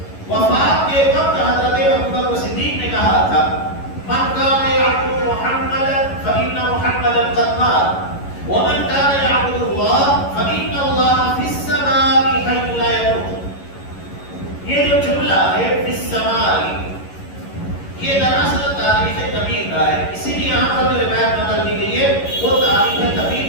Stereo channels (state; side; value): late; right; 11 ms